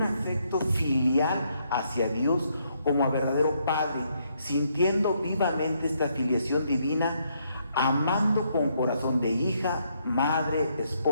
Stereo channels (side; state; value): both; inverted; correlation -0.74